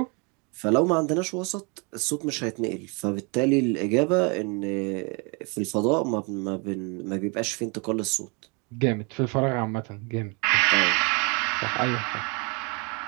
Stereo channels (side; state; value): left; quieter; 32.1 dB